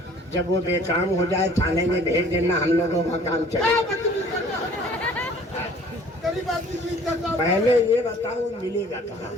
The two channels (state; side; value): normal; both; correlation 0.52